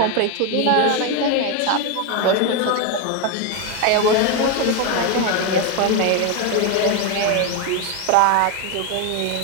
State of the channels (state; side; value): different; both; correlation 0.02